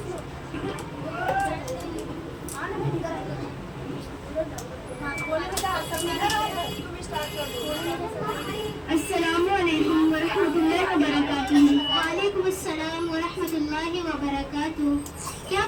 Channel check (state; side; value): identical; both; correlation 1.00